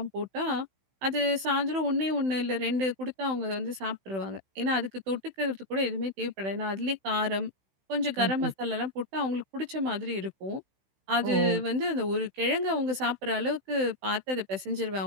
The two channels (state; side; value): late; left; 16 ms